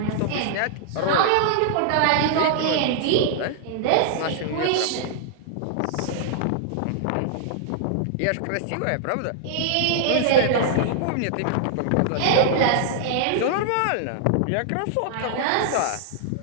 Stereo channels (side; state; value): both; different; correlation -0.01